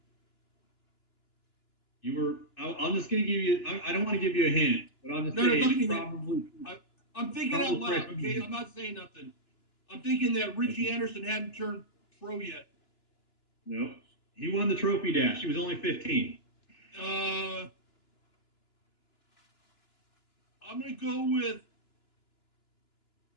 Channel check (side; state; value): right; late; 2.9 ms